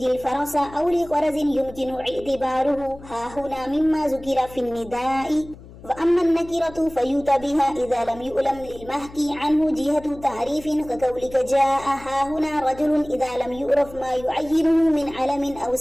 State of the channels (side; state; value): left; noise; hum, 19 dB below the sound